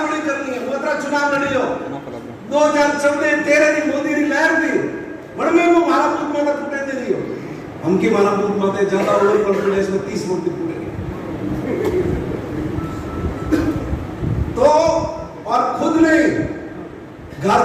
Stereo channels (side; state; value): both; identical; correlation 1.00